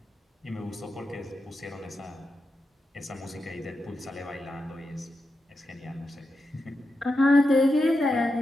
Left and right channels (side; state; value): both; normal; correlation 0.88